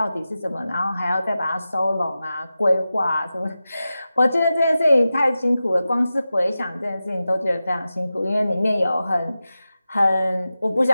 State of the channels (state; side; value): inverted; both; correlation -0.93